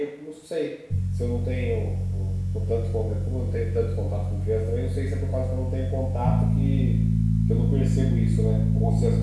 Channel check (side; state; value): both; identical; correlation 1.00